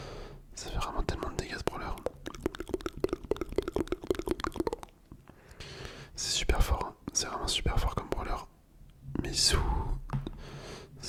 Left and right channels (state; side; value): identical; both; correlation 1.00